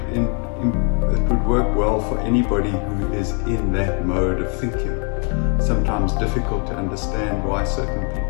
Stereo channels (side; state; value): right; quieter; 39.4 dB